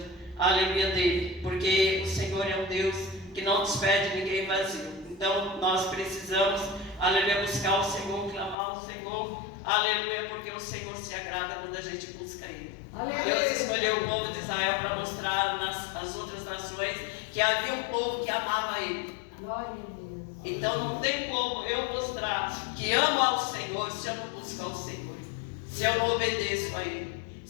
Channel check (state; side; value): drops out; right; at 8.6 s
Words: aleluia, dele, porque o Senhor é um Deus que não despede ninguém vazio. Então nós precisamos, aleluia, buscar o Senhor, clamar ao Senhor, aleluia, porque o Senhor se agrada quando a gente busca Ele. Aleluia. Deus escolheu o povo de Israel para mostrar às outras nações que havia um povo que amava Ele. Glória a Deus. Então não tem como eu mostrar que amo ao Senhor se eu não busco ao Senhor, se eu não obedeço a Ele,